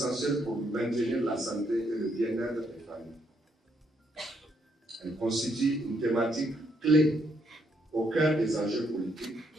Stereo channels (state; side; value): normal; both; correlation 0.74